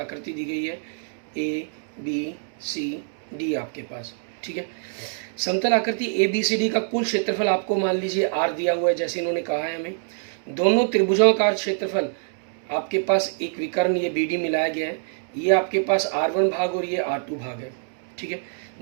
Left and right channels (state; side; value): silent; left; digital silence